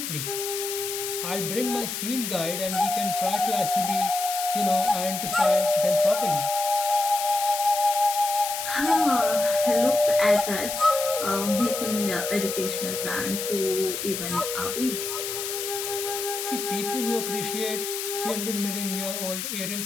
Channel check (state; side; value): noise; left; hiss, 4 dB below the sound